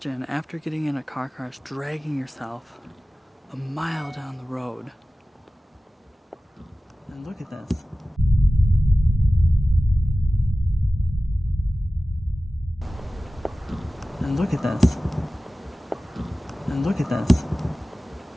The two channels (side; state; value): both; normal; correlation 0.96